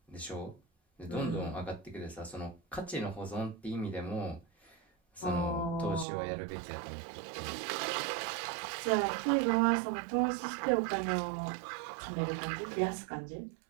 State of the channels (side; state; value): left; drops out; at 6.1 s